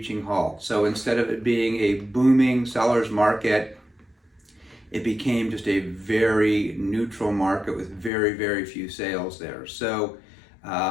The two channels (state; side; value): drops out; right; at 8.1 s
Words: halt. So instead of it being a booming seller's market, it became just a very neutral market with very few sales there. So